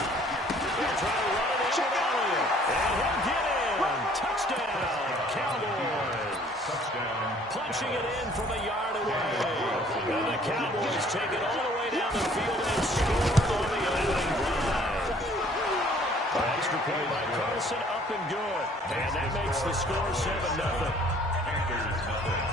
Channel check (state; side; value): normal; both; correlation 0.57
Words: try to run it in with Elliott. And he'll get in. Touchdown, Cowboys. Punching it in from a yard away. And the Cowboys take it all the way down the field and score on the opening drive. Extra play by Carson, up and good. And that makes the score 7-0.